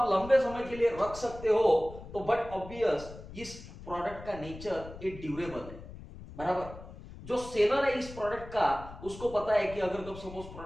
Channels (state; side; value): noise; left; rumble, 14 dB below the sound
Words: लंबे समय के लिए रख सकते हो तो बट ऑब्वियस इस प्रोडक्ट का नेचर ये ड्यूरेबल है। बराबर। जो सेलर है इस प्रोडक्ट का उसको पता है कि अगर कब सपोज